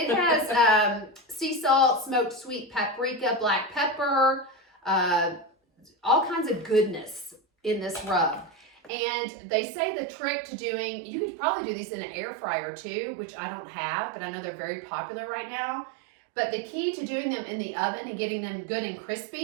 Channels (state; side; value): drops out; left; at 8.9 s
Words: has sea salt, smoked sweet paprika, black pepper, all kinds of goodness in this rub. And they say the trick to doing, you could probably do these in an air fryer too, which I don't have, but I know they're very popular right now. But the key to doing them in the oven and getting them good and